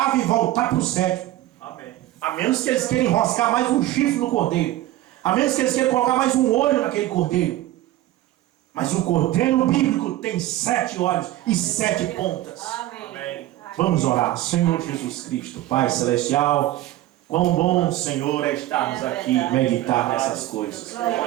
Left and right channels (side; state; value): left; quieter; 15.1 dB